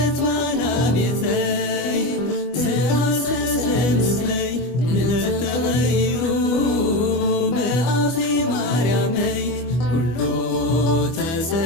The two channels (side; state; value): right; late; 24 ms